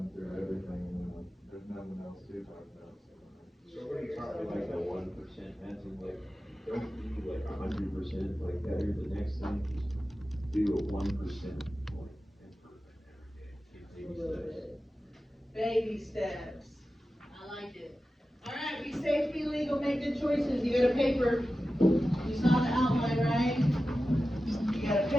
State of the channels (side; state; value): both; normal; correlation 0.94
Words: through everything and then like, there's nothing else to talk about. Somebody taught me like the 1% method, like, don't be like 100%, like better the next time, just do a 1% like improvement every day. Take baby steps. Baby steps. I like it. All right, be safe, be legal, make good choices. You got a paper.